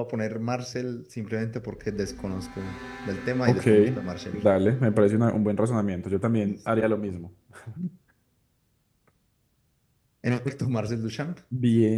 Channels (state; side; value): identical; both; correlation 1.00